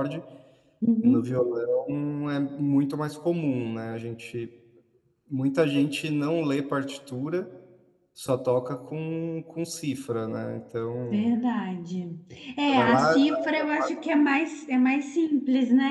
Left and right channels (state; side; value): identical; both; correlation 1.00